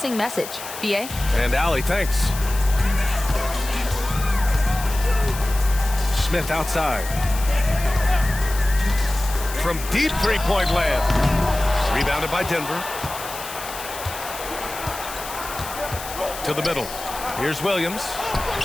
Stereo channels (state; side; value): noise; left; hiss, 11 dB below the sound